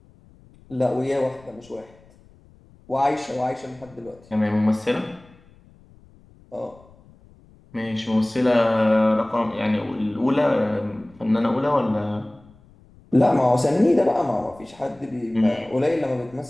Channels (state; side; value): noise; left; rumble, 27 dB below the sound